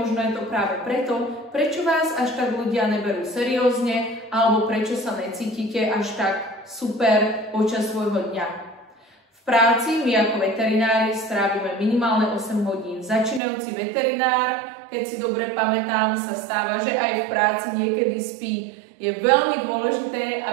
je to práve preto, prečo vás až tak ľudia neberú seriózne alebo prečo sa necítite až tak super počas svojho dňa. V práci my ako veterinári strávime minimálne 8 hodín. Začínajúci veterinár, keď si dobre pamätám, sa stáva, že aj v práci niekedy spí. Je veľmi dôležité,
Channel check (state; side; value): drops out; left; at 13.4 s